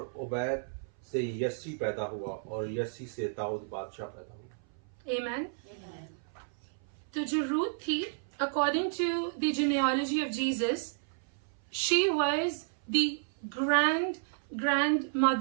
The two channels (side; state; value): left; silent; 56 dB below the other